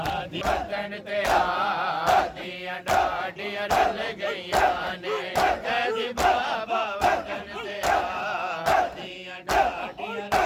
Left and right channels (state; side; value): identical; both; correlation 1.00